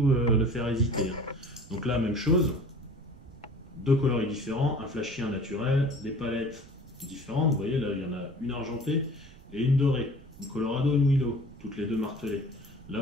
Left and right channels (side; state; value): right; noise; rumble, 21 dB below the sound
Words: le faire hésiter. Hein. Donc là, même chose, deux coloris différents, un flashy, un naturel, des palettes différentes. Vous voyez, là, il y en a une argentée et une dorée, une Colorado et une Willow, toutes les deux martelées. Là,